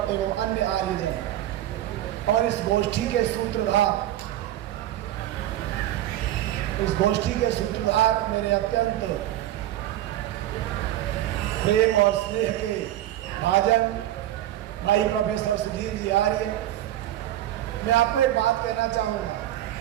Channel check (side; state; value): left; quieter; 13.5 dB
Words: एवं अन्य आर्यजन और इस गोष्ठी के सूत्रधार मेरे अत्यंत प्रेम और स्नेह के भाजन भाई प्रोफेसर सुधीर जी आर्य। मैं आपको एक बात कहना चाहूँगा